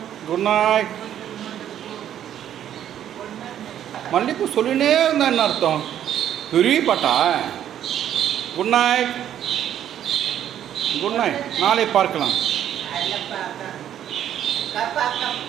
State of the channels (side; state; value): left; quieter; 10.5 dB